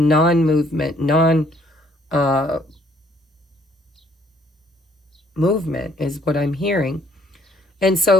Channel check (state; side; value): normal; both; correlation 0.64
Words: movement is what I'm hearing. And